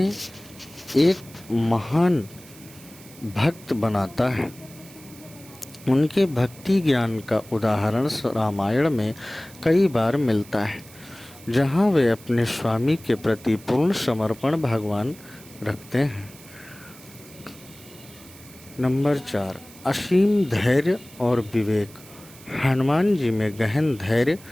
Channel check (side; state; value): right; noise; hiss, 21 dB below the sound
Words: एक महान भक्त बनाता है। उनके भक्ति ज्ञान का उदाहरण रामायण में कई बार मिलता है, जहां वे अपने स्वामी के प्रति पूर्ण समर्पण भगवान रखते हैं। नंबर 4, असीम धैर्य और विवेक। हनुमान जी में गहन धैर्य